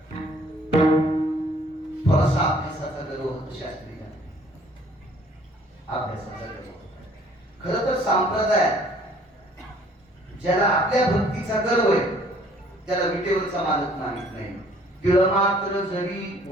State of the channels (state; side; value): normal; both; correlation 0.58